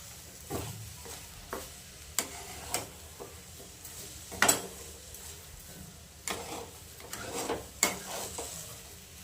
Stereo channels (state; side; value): identical; both; correlation 1.00